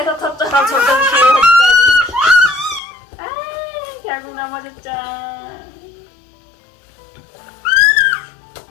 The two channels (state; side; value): drops out; right; at 2.8 s